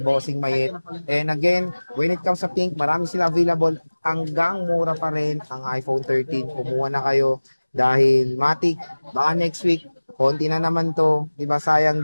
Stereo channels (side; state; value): both; inverted; correlation -1.00